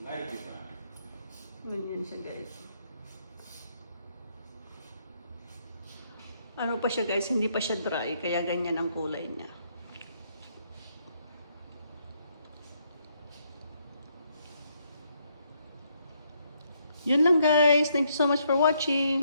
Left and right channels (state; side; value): inverted; both; correlation -0.74